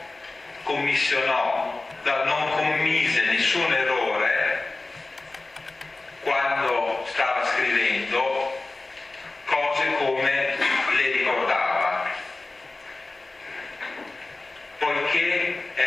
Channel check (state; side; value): quieter; right; 3.2 dB